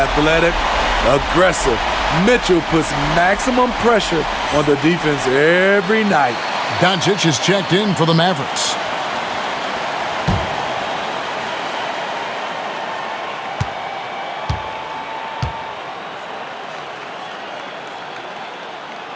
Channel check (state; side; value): identical; both; correlation 1.00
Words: aggressive. Mitchell puts maximum pressure on the defense every night. Doncic is checked in for the Mavericks.